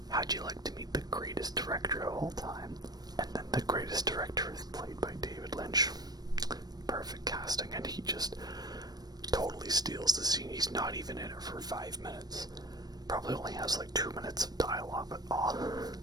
How'd you like to meet the greatest director of all time? And then the greatest director is played by David Lynch. Perfect casting, and he just totally steals the scene. He's not even in it for 5 minutes. Probably only has like 2 minutes of dialogue, but oh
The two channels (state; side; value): late; left; 0.19 ms